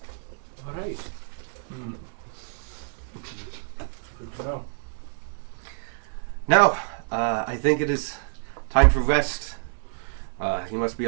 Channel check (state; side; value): silent; left; digital silence